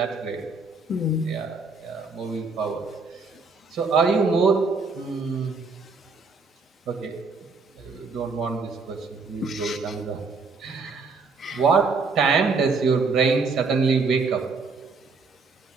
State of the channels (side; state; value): left; quieter; 4.2 dB